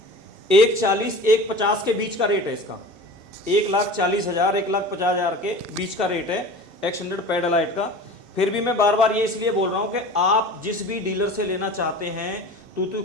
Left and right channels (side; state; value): left; late; 2.7 ms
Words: 140 150 के बीच का रेट है इसका। 1,40,000 1,50,000 के बीच का रेट है एक्सटेंडेड पैड एलाइट का। फिर भी मैं बार बार ये इसलिए बोल रहा हूँ कि आप जिस भी डीलर से लेना चाहते हैं, तू